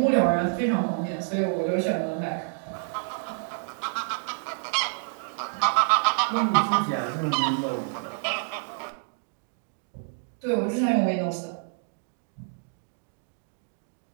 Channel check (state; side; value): silent; left; digital silence